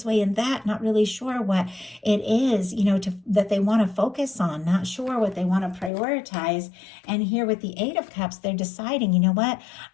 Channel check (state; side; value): drops out; right; at 5.9 s